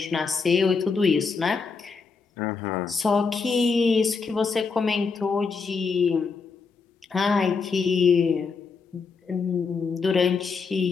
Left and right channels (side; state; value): right; quieter; 4.9 dB